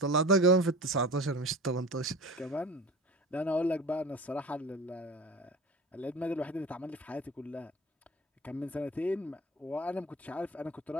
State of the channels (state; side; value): normal; both; correlation 0.36